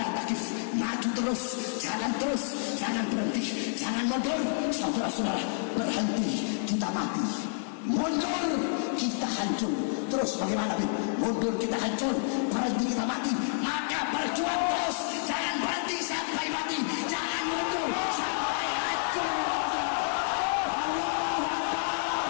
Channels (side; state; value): right; silent; 58 dB below the other